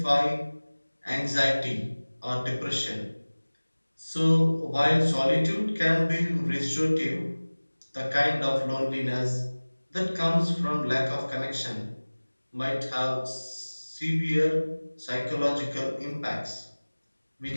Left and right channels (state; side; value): inverted; both; correlation -1.00